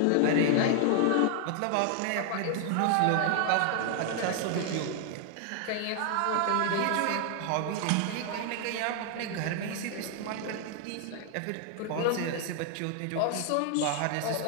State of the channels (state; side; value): different; both; correlation 0.00